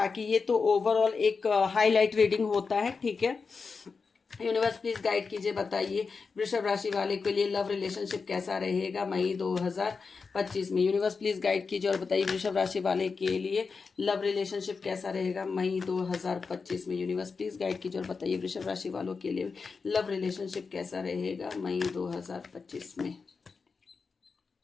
ये तो ओवरऑल एक हाईलाइट रीडिंग होता है, ठीक है। यूनिवर्स प्लीज गाइड कीजिए, बताइए वृषभ राशि वाले के लिए लव रिलेशनशिप कैसा रहेगा मई 2025 में। यूनिवर्स प्लीज गाइड कीजिए और बताइए वृषभ राशि वाले के लिए लव रिलेशनशिप कैसा रहेगा मई 2025 में। यूनिवर्स प्लीज गाइड कीजिए और बताइए वृषभ राशि वालों के लिए लव रिलेशनशिप कैसा रहेगा मई 2025 में।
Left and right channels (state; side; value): quieter; right; 4.9 dB